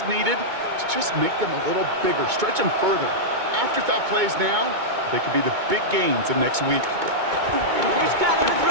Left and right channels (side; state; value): left; late; 2.2 ms